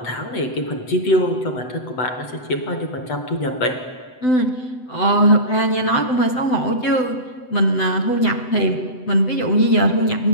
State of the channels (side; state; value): right; late; 7.9 ms